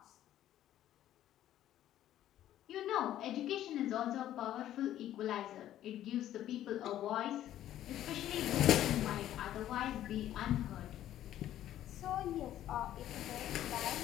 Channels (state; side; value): quieter; right; 12.4 dB